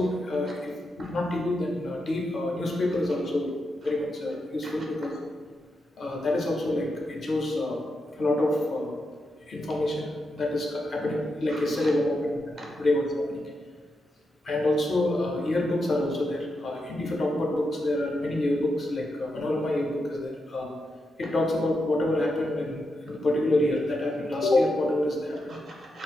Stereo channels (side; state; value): both; normal; correlation 0.85